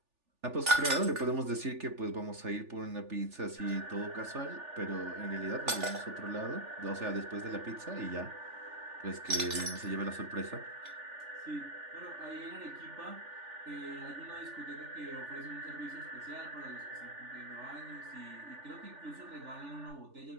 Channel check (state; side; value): late; left; 3.4 ms